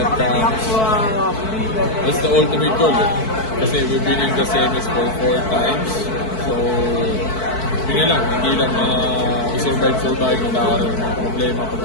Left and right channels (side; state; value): right; late; 4.6 ms